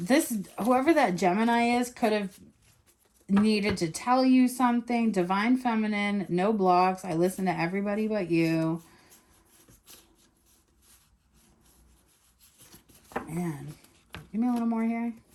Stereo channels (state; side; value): identical; both; correlation 1.00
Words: Whoever that Gemini is could have needed to tell you something. Divine Feminine, no blocks. I listen to everybody but you. Man, give me a little more here.